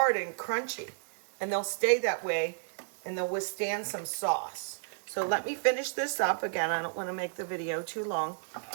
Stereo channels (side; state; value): left; silent; digital silence